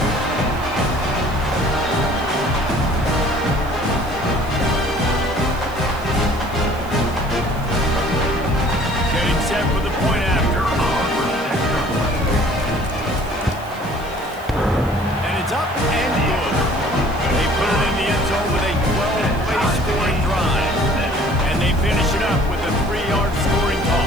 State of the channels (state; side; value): noise; right; hiss, 22 dB below the sound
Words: Getting set for the point after. And it's up and good. They put it in the end zone with a 12-play scoring drive. And they finish it up with a 3-yard scoring